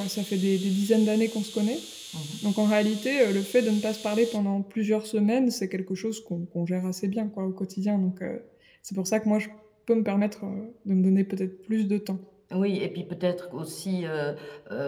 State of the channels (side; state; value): both; identical; correlation 1.00